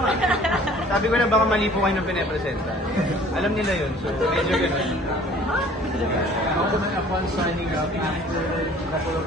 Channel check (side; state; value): both; normal; correlation 0.51